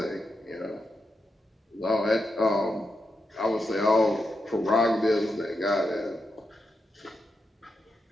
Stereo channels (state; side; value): normal; both; correlation 0.86